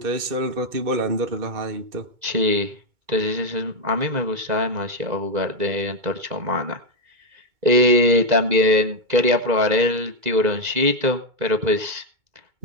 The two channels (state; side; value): late; left; 2.2 ms